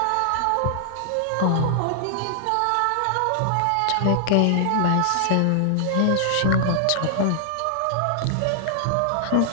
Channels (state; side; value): different; both; correlation -0.01